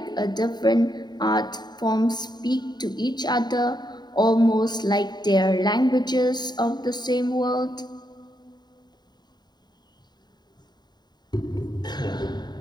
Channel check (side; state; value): right; late; 0.20 ms